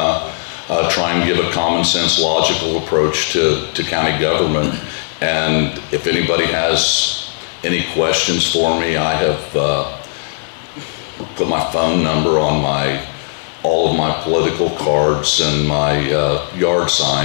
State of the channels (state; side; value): silent; right; digital silence